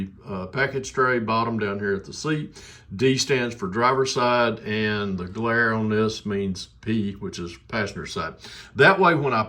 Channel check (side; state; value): both; identical; correlation 1.00